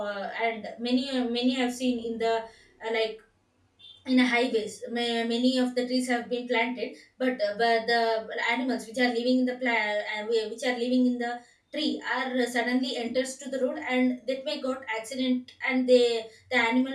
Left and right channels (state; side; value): identical; both; correlation 1.00